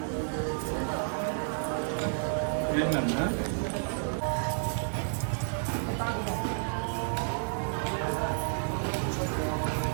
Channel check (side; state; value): left; silent; digital silence